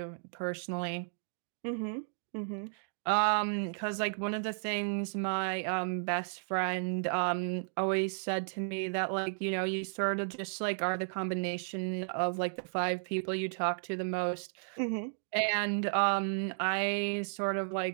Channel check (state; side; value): silent; left; digital silence